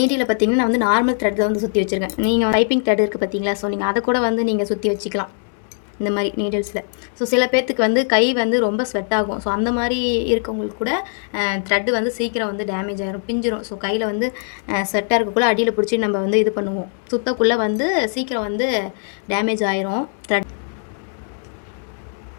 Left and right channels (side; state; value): right; silent; 60 dB below the other